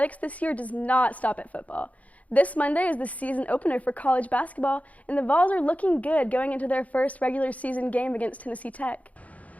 this year does not stop at football. This Monday is the season opener for college basketball, and the Vols are looking good going into their first regular season game against Tennessee Tech.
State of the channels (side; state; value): right; late; 0.070 ms